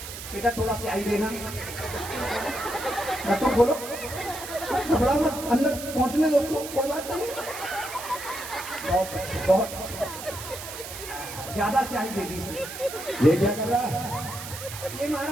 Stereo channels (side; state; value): right; noise; hiss, 10 dB below the sound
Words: बेटा थोड़ा से आई देना, तो बोलो, घबरा मत, अंदर पहुंचने दो उसको, कोई बात नहीं। बहुत अच्छी, बहुत अच्छी। ज्यादा स्याही दे दी इसने। ये क्या कर रहा है? ये